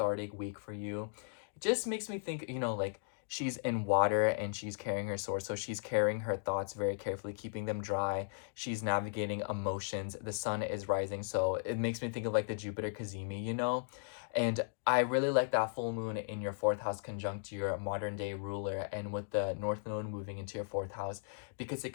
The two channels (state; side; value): silent; right; digital silence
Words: week for you. It just makes me think, like she's in water and she's carrying her sword. So she's carrying her thoughts very carefully, keeping them dry. She's navigating emotions. The sun is rising. So it makes me think of like the Jupiter Kazemi. And I really like that full moon in your 4th house conjunct your modern day ruler, and with the North Node moving into your 4th house, because